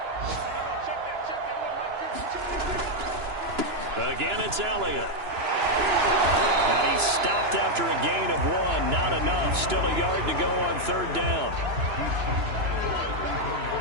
Again, it's Elliott. And he's stopped after a gain of 1. Not enough. Still a yard to go on 3rd down.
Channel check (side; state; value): left; late; 2.9 ms